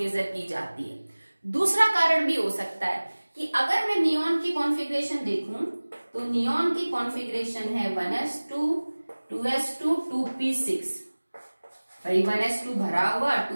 की जाती है। दूसरा कारण भी हो सकता है कि अगर मैं नियॉन की कॉन्फ़िगरेशन देखूं तो नियॉन की कॉन्फ़िगरेशन है 1s2 2s2 2p6, भाई 1s2 भरा हुआ,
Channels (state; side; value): inverted; both; correlation -1.00